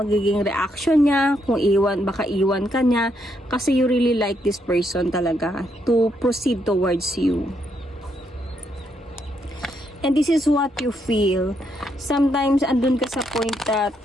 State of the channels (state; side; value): normal; both; correlation 0.77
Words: magiging reaction niya, kung baka iwan ka niya, kasi you really like this person talaga to proceed towards you. And this is what you feel. Sometimes andun ka sa point that